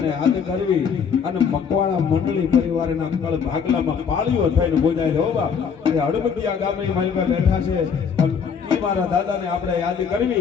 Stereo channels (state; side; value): quieter; right; 6.6 dB